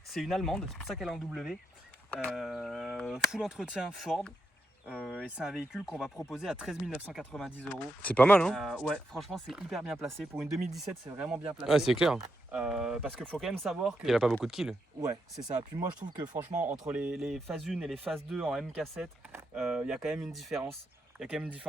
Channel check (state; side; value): normal; both; correlation 0.83